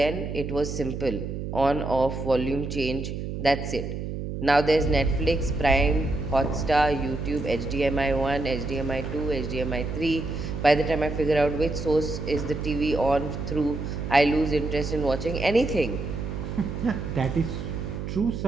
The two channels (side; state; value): right; noise; hum, 5 dB below the sound